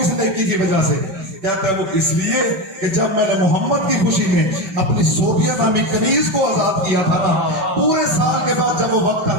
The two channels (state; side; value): late; left; 5.2 ms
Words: نیکی کی وجہ سے؟ کہتا ہے وہ اس لیے کہ جب میں نے محمد کی خوشی میں اپنی زوبیہ نامی کنیز کو آزاد کیا تھا نا، پورے سال کے بعد جب وہ وقت